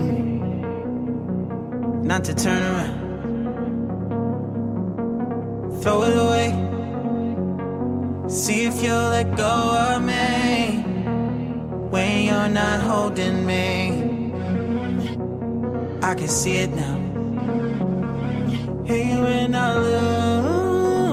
not to turn around. Throw it away. See if you'll let go of me when you're not holding me. I can see it now. Hey, when I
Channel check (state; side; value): identical; both; correlation 1.00